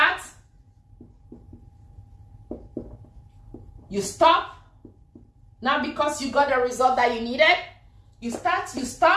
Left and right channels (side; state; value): both; identical; correlation 1.00